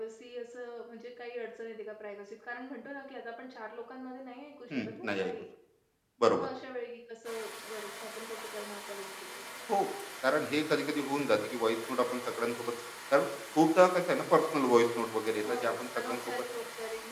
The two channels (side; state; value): both; identical; correlation 1.00